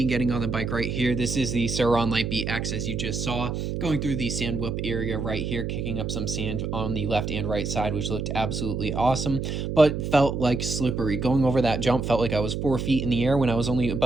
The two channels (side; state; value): right; noise; hum, 3 dB below the sound